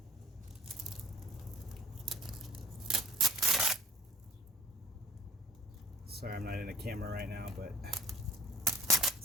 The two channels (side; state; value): both; normal; correlation 0.47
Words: Sorry, I'm not in a camera right now, but